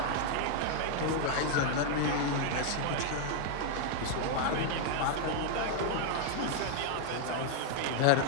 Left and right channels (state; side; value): different; both; correlation 0.00